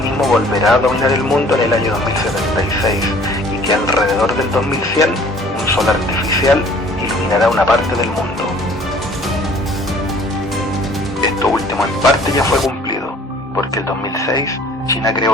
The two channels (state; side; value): normal; both; correlation 0.53